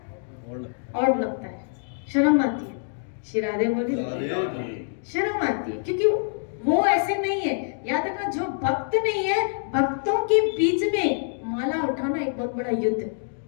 और लगता है, शर्म आती है। श्री राधे बोली, शर्म आती है, क्योंकि वो ऐसे नहीं है। याद रखना, जो भक्त नहीं है, भक्तों के बीच में माला उठाना एक बहुत बड़ा युद्ध है।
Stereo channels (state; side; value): silent; right; digital silence